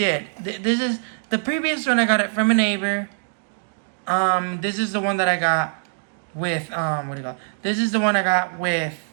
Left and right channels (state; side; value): silent; left; digital silence